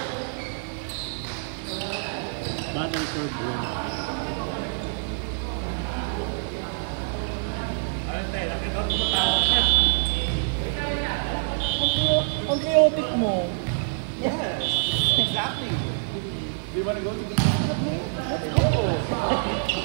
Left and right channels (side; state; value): left; silent; digital silence